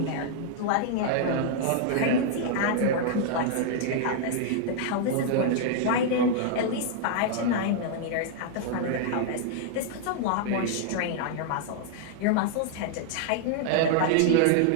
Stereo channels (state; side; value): different; both; correlation -0.01